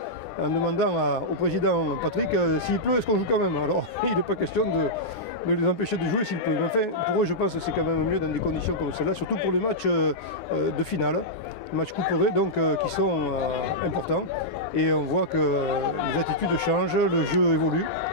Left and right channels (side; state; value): right; late; 9.9 ms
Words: en demandant au président Patrick, s'il pleut, est-ce qu'on joue quand même? Alors, il n'est pas question de les empêcher de jouer s'il pleut. Mais enfin, pour eux, je pense que c'est quand même mieux dans des conditions comme celle-là, surtout pour les matchs de finale. Matchs couperés donc qui sont importants, et on voit que les attitudes changent, le jeu évolue.